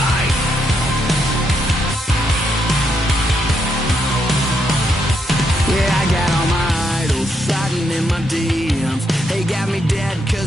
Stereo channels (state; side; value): normal; both; correlation 0.78